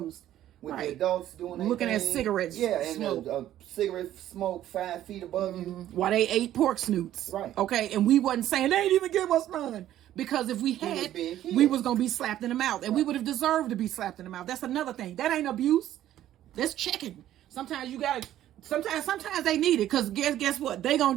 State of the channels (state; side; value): quieter; left; 12.5 dB